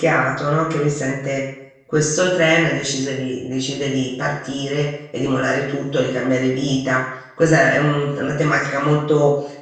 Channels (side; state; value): both; identical; correlation 1.00